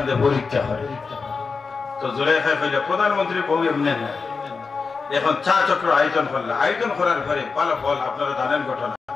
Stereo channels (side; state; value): right; quieter; 4.7 dB